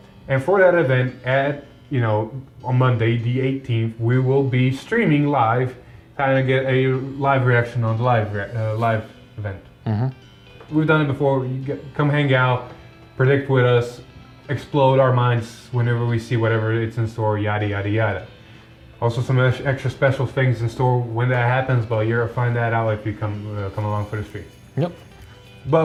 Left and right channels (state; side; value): identical; both; correlation 1.00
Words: And for that event at, on Monday, the 18th, we will be streaming live, kind of get a live reaction on the live event. We've done it before. Come hang out, predict with us, explode our minds whenever we see whatever it's in store, yada, yada, yada. Also some extra special things in store when that happens, but you'll find that out if you come along for the stream. Yep.